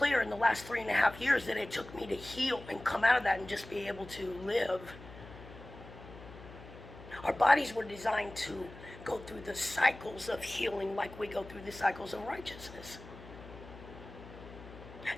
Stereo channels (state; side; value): noise; left; hum, 16 dB below the sound